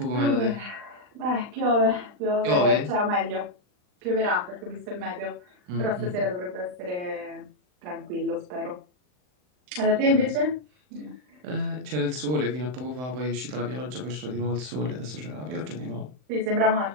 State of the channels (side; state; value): left; late; 39 ms